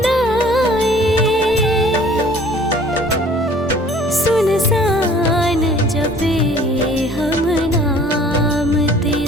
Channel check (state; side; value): normal; both; correlation 0.52